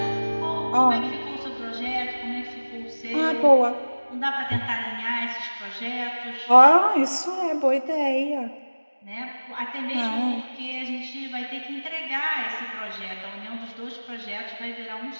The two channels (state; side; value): inverted; both; correlation -1.00